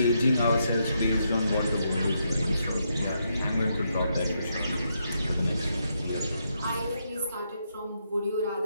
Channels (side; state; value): both; inverted; correlation -0.80